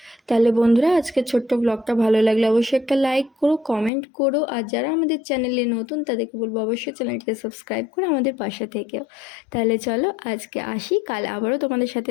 তাহলে বন্ধুরা, আজকে ছোট্ট ব্লগটা ভালো লাগলে অবশ্যই একটা লাইক করো, কমেন্ট করো। আর যারা আমাদের চ্যানেলে নতুন তাদেরকে বলবো অবশ্যই চ্যানেলটিকে সাবস্ক্রাইব করে আমাদের পাশে থেকেও। তাহলে চলো আজকে আসি, কাল আবারও তোমাদের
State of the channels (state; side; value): drops out; right; at 3.9 s